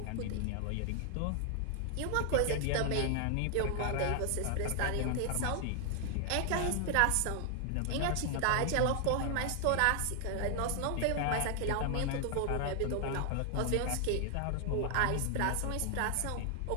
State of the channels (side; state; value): both; different; correlation 0.00